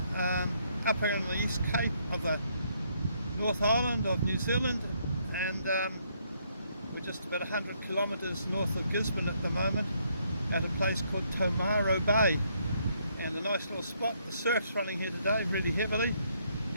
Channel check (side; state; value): both; inverted; correlation -0.72